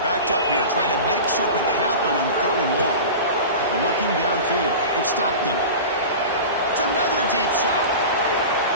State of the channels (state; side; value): inverted; both; correlation -0.32